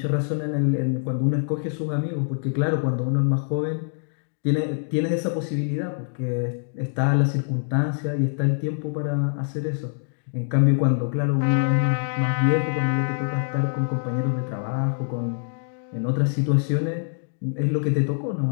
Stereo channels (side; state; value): right; silent; digital silence